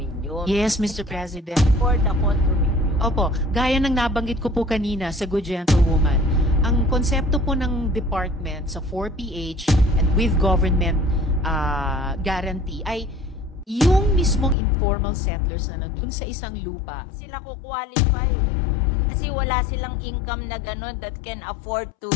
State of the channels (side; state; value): right; drops out; at 14.6 s